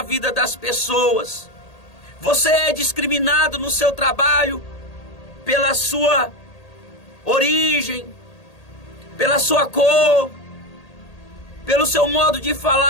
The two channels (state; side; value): late; right; 1.8 ms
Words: vida das pessoas. Você é discriminado no seu trabalho pela sua origem, pela sua cor, pelo seu modo de